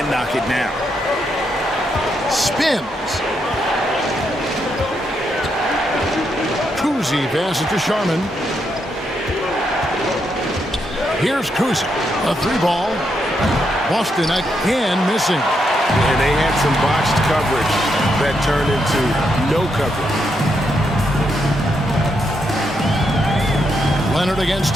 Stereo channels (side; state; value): both; normal; correlation 0.80